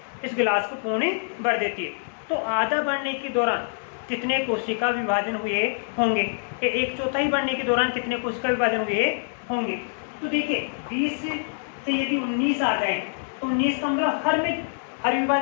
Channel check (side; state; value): right; silent; digital silence